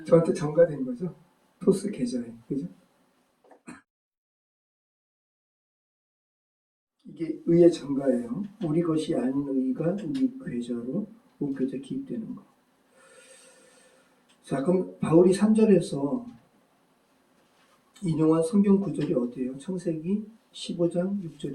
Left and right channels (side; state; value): both; identical; correlation 1.00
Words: 저한테 전가된 거죠. 토스 계좌에. 그죠? 이게 의의 전가예요. 우리 것이 아닌 의가 우리 계좌로 옮겨져 기입되는 거. 자, 그럼 바울이 3절에서 인용한 성경 구절이 어디예요? 창세기 15장